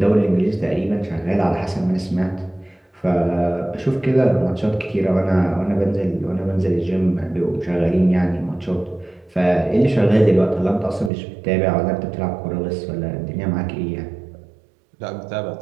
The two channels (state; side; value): drops out; left; at 11.1 s